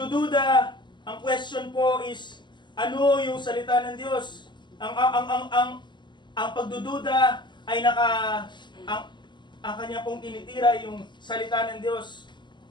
ang question po is, ano yung salita ng Diyos? Ang pagdududa ay ang kanya pong tinitira yung salita ng Diyos.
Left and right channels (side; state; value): right; late; 0.22 ms